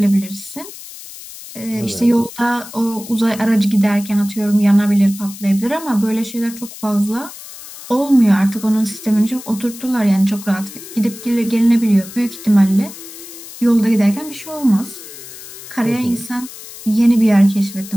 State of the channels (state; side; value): noise; left; hiss, 15 dB below the sound